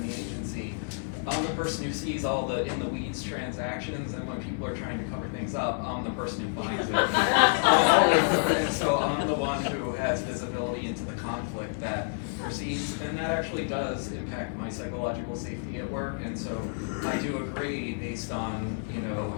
the agency, I'm the person who sees all the in the weeds transactions, and when people are trying to cover things up, I'm the person who finds it. And so I'm the one who has visibility into the conflict that proceeds, and that actually does impact my psychological safety at work. And so I do agree, based on, you know,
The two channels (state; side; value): silent; right; digital silence